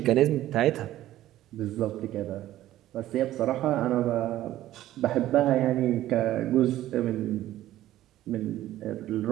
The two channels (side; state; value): left; quieter; 14.0 dB